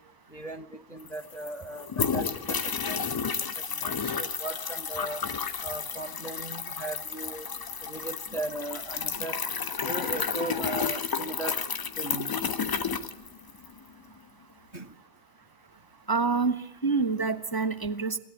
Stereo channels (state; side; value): late; right; 1.0 ms